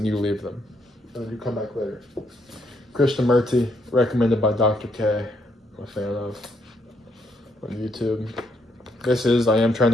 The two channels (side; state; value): both; normal; correlation 0.73